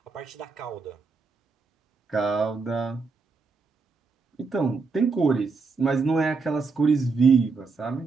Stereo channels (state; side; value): quieter; left; 4.4 dB